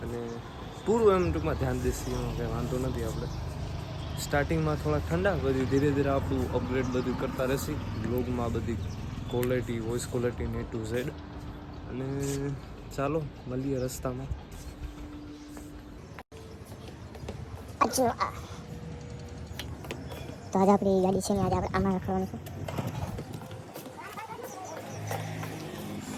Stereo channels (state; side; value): identical; both; correlation 1.00